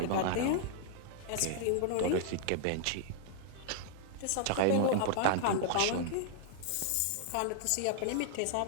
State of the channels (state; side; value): different; both; correlation -0.01